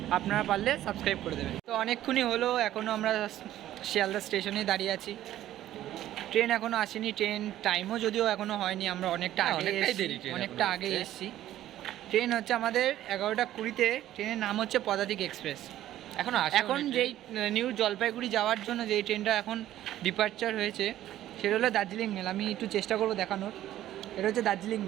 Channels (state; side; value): quieter; left; 13.2 dB